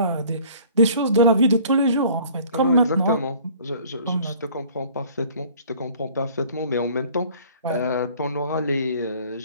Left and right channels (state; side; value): inverted; both; correlation -0.52